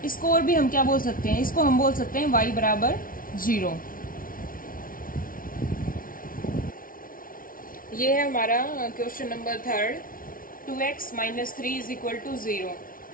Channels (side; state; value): right; late; 0.41 ms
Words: इसको और भी हम क्या बोल सकते हैं, इसको हम बोल सकते हैं y = 0। ये है हमारा क्वेश्चन नंबर 3, 2x - 3 = 0।